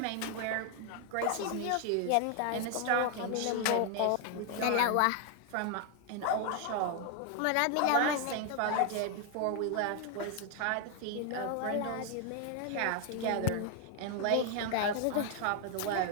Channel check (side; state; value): both; different; correlation 0.00